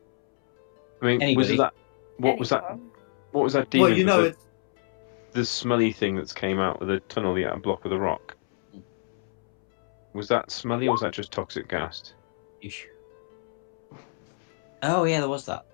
I mean, Anybody? What was that? Anyone? What was that demon? Well, you know, it's the smelly thing that's came out of the tunnel, the block of the rock. Was that smelly, or was that just toxic gas? Ish. Oh yeah, there was that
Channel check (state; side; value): silent; right; 61 dB below the other